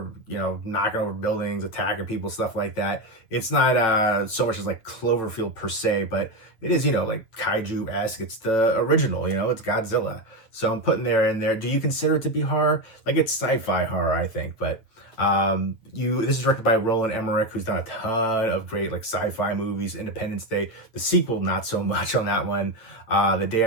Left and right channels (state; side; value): late; right; 9.1 ms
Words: you know, knocking over buildings, attacking people, stuff like that. It's not so much as like Cloverfield per se, but it is, you know, like kaiju-esque. It's the original, you know, it's Godzilla. So I'm putting there in there. Do you consider it to be horror? Like it's sci-fi horror, I think, but this is directed by Roland Emmerich, who's done a ton of great like sci-fi movies. Independence Day, the sequel, not so much on that one. The Day